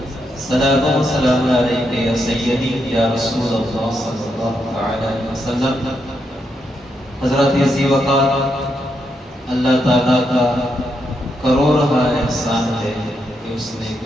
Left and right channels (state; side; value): normal; both; correlation 0.81